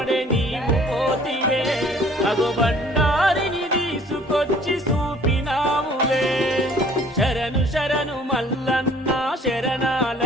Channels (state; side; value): normal; both; correlation 0.55